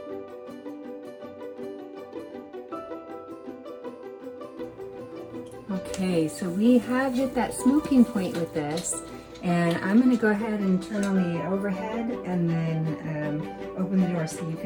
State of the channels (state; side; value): identical; both; correlation 1.00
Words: Okay, so we have hit that smoking point with this, and I'm going to go ahead and turn on the overhead and then open the door so you